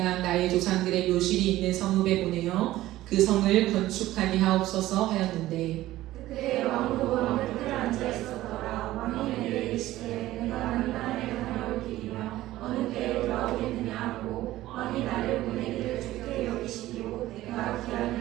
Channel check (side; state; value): left; quieter; 15.7 dB